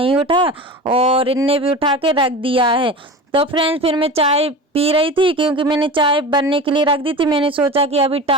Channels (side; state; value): both; normal; correlation 0.31